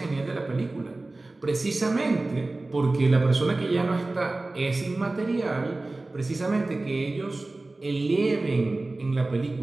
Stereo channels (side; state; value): left; quieter; 3.1 dB